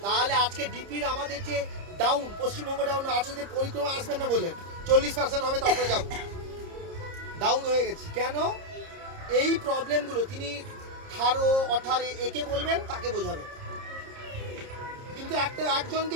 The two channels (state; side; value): late; left; 30 ms